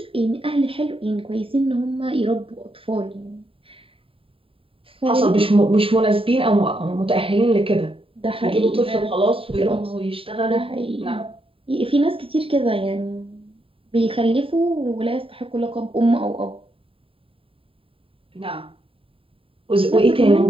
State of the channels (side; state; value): left; late; 0.27 ms